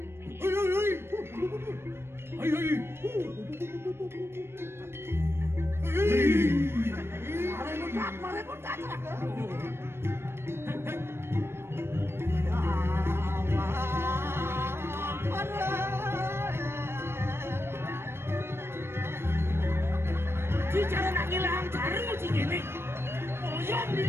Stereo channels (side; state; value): left; late; 0.12 ms